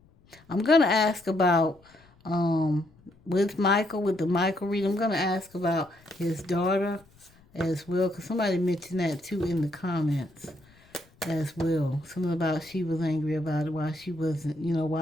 I'm gonna ask about with Michael, with the Michael read. I'm gonna ask about his daughter as well, because somebody mentioned that too in the comments as well. Something about she was angry about it, why she wasn't,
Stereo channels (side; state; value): left; noise; rumble, 29 dB below the sound